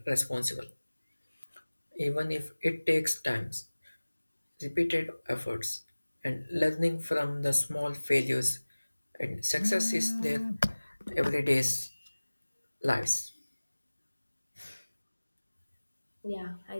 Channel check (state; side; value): inverted; both; correlation -1.00